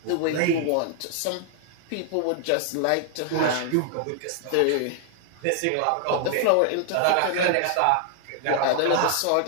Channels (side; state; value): both; different; correlation 0.00